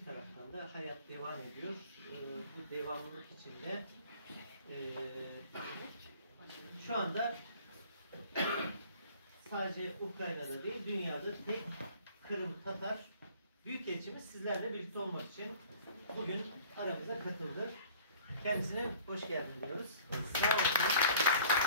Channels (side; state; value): both; inverted; correlation -0.50